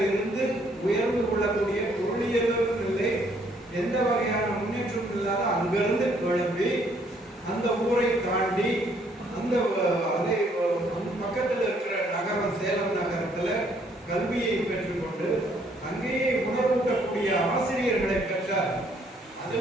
இருந்து உயர்ந்து கொள்ளக்கூடிய பொருளியலும் இல்லை, எந்த வகையான முன்னேற்றமும் இல்லாத அங்கிருந்து கிளம்பி அந்த ஊரை தாண்டி அந்த பக்கத்தில் இருக்கிற நகரம் சேலம் நகரத்துல கல்வியை பெற்றுக்கொண்டு அங்கேயே உணர்வூட்டக்கூடிய ஆசிரியர்களை பெற்றார்.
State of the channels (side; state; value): both; normal; correlation 0.66